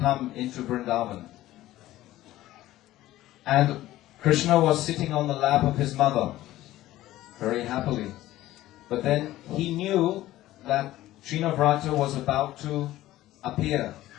into Vrindavan. And Krishna was sitting on the lap of his mother, very happily. But then he knew that Trinavrata was about to appear.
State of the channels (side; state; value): right; quieter; 15.4 dB